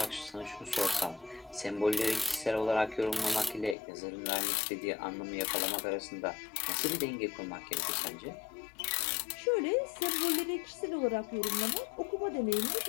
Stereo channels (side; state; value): right; drops out; at 3.8 s